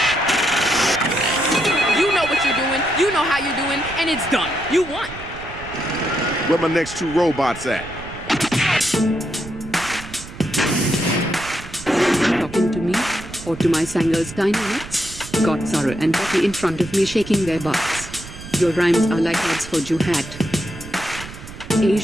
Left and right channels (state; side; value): noise; right; rumble, 14 dB below the sound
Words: And it's done. You won. Where my next 2 robots at? Talking to me? Or to my Sanger's dynamics? Got Zara and Becky in front of me shaking their butts. Your rhymes are like ads for Juhat.